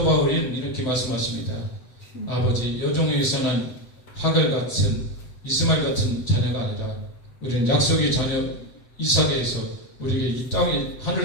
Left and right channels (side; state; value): right; late; 7.9 ms